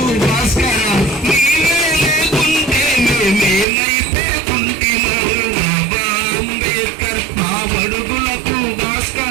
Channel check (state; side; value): drops out; left; at 3.7 s